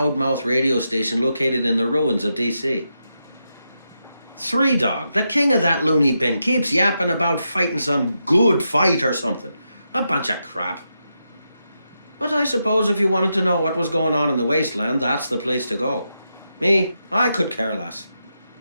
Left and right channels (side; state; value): both; inverted; correlation -0.85